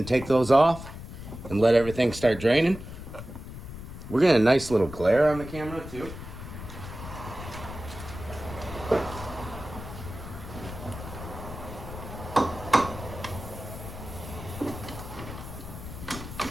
take those off and let everything start draining. We're getting a nice little glare on the camera too.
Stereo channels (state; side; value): noise; left; rumble, 11 dB below the sound